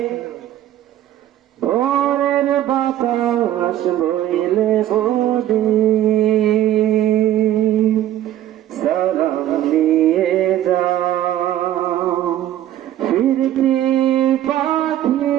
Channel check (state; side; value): quieter; left; 12.4 dB